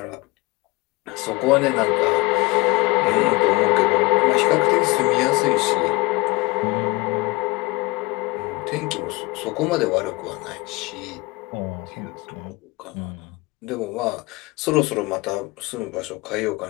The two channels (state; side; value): quieter; right; 24.6 dB